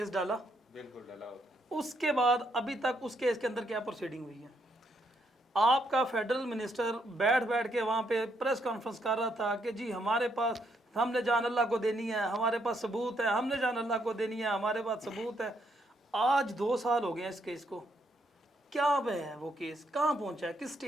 ڈالا، بالکل ڈالا ہوتا ہے۔ اس کے بعد ابھی تک اس کیس کے اندر کیا پروسیڈنگ ہوئی ہے؟ آپ کا فیڈرل منسٹر بیٹھ کے وہاں پہ پریس کانفرنس کر رہا تھا کہ جی ہمارے پاس، ہم نے جان اللہ کو دینی ہے، ہمارے پاس ثبوت ہے، ہم نے جان اللہ کو دینی ہے، ہمارے پاس ثبوت ہے۔ آج 2 سال ہو گئے ہیں اس کیس کو، کیا پہ ہے وہ کیس، کہاں پہنچا ہے، کس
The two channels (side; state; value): both; normal; correlation 0.75